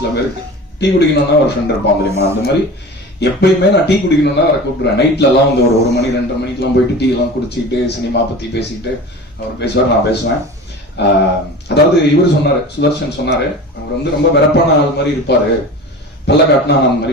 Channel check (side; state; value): both; normal; correlation 0.35